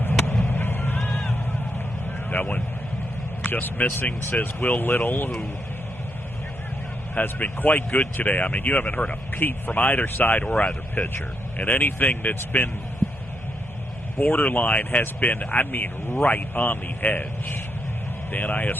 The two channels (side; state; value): both; normal; correlation 0.79